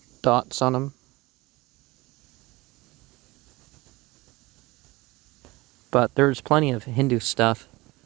dots on them. But there's plenty of Hindu stuff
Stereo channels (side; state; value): left; quieter; 21.6 dB